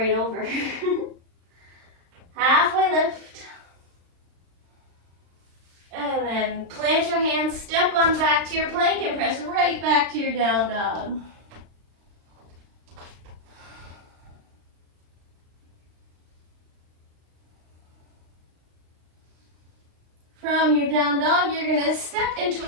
over. Halfway lift. And then plant your hands, step on back to your plank, and press right back to your down dog. From your down dog, you're going to step into a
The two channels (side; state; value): left; late; 36 ms